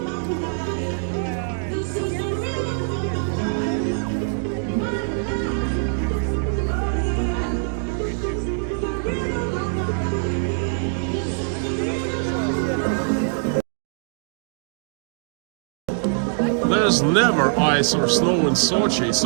There's never ice or snow in Sochi.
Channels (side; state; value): left; silent; digital silence